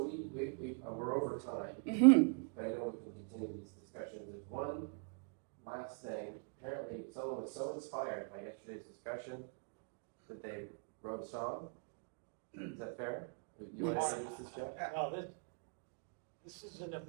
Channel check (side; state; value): left; quieter; 36.0 dB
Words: over time. But I know we can continue these discussions. There's one last thing. Apparently someone was so inspired by yesterday's discussion that they wrote a song. Is that fair? You want to introduce this, Jeff? Well, this is an